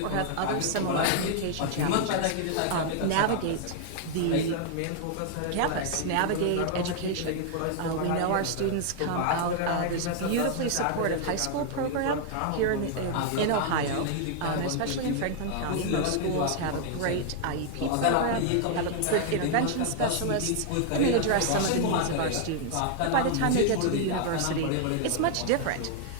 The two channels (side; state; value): both; different; correlation 0.00